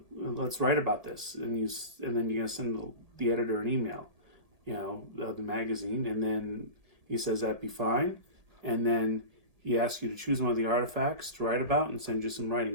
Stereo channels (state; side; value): late; left; 1.8 ms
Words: write about this," and then you're gonna send the editor an email, of the magazine, and then he says that'd be fine, and then he asks you to choose one of the artifacts to write about and send you some